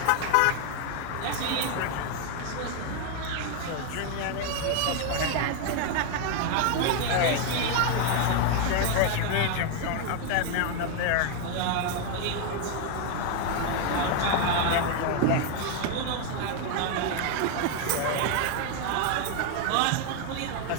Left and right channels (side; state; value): both; different; correlation 0.01